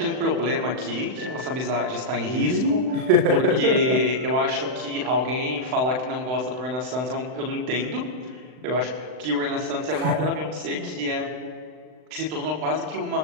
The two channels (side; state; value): left; late; 39 ms